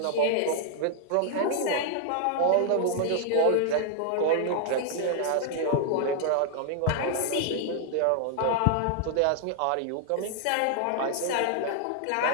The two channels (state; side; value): different; both; correlation 0.00